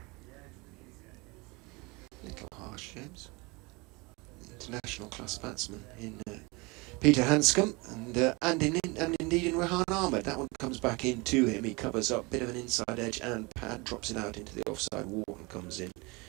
Little harsh, James. International class batsman in Peter Hanscom and indeed in Rehan Ahmed. That one comes back into him. He covers up, bit of an inside edge, and Pad drops it out into the offside. Wharton comes in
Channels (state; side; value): quieter; left; 26.4 dB